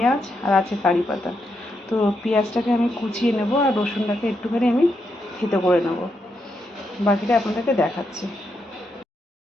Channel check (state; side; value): normal; both; correlation 0.81